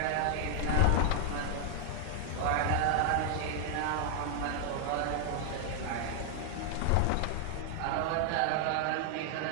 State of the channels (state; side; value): different; both; correlation 0.00